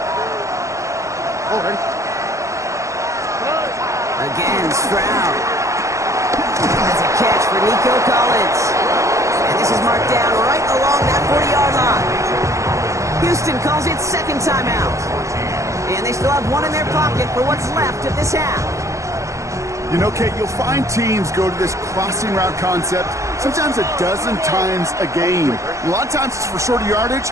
All right. Again, Stroud. Has a catch for Nico Collins. And this is marked down right along that 40-yard line. Houston calls it second timeout. And they still have one in their pocket for what's left of this half. You know, Kate, you'll find teams go to this crossing route concept sometimes a dozen times a game. A lot of times it's for shorter yardage,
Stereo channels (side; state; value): left; late; 0.15 ms